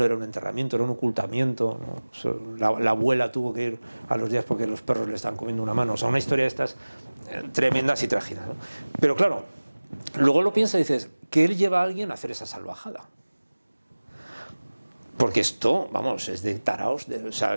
era un enterramiento, era un ocultamiento, ¿no? La abuela tuvo que ir a los días porque los perros le estaban comiendo una mano. O sea, una historia de estas tremendas y trágicas, ¿no? Pero claro, luego lo piensas y dices, ¿qué él lleva a alguien a hacer esa salvajada? Porque esto, vamos, es de taraos, o sea,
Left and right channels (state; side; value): inverted; both; correlation -1.00